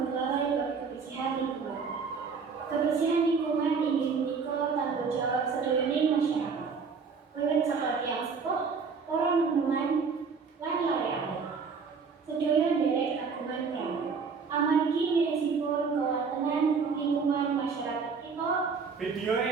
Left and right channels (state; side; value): quieter; left; 5.4 dB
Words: lalai bab kebersihan lingkungan. Kebersihan lingkungan inggih menika tanggung jawab sedaya masyarakat. Wiwit saka tiyang sepuh, para neneman lan larekan. Sedaya nderek kagungan peran. Amargi mirisipun kewontenan lingkungan masyarakat kita. Video